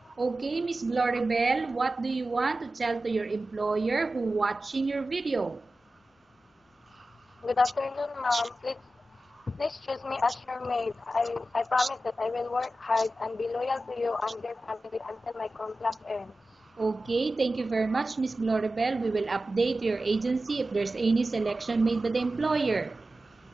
Okay, Miss Gloribel, what do you want to tell to your employer who watching your video? Good afternoon, ma'am. Please choose me as your maid. I promise that I will work hard and be loyal to you and your family until my contract ends. Okay, thank you very much, Miss Gloribel. We will update your agency if there's any selection made by the employer.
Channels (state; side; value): normal; both; correlation 0.94